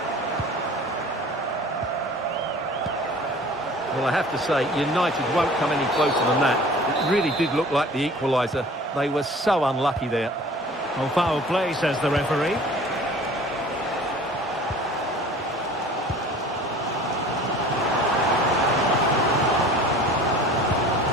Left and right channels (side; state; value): both; normal; correlation 0.46